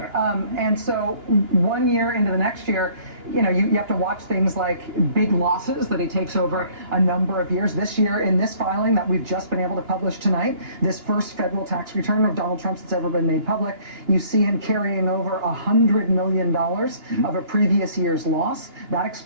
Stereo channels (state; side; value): late; left; 2.9 ms